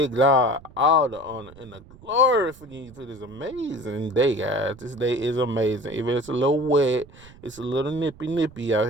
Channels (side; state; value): right; noise; rumble, 22 dB below the sound